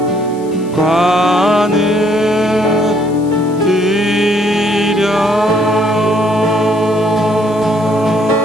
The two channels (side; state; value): left; noise; hiss, 24 dB below the sound